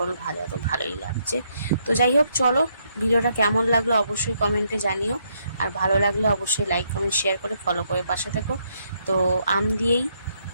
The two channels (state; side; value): inverted; both; correlation -0.75